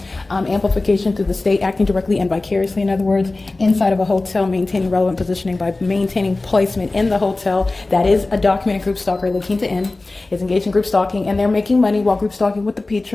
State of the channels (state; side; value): quieter; right; 3.2 dB